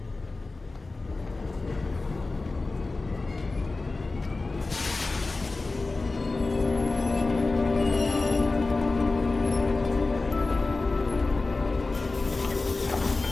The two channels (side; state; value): right; quieter; 3.5 dB